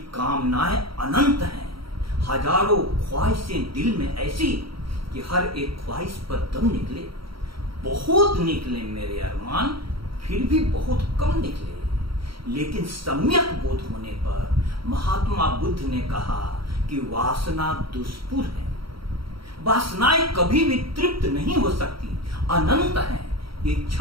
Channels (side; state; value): left; late; 0.74 ms